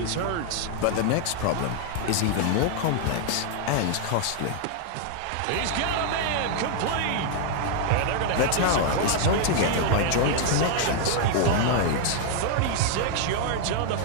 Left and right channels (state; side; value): different; both; correlation 0.00